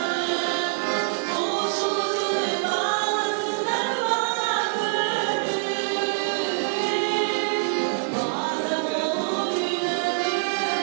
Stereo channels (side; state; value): left; silent; digital silence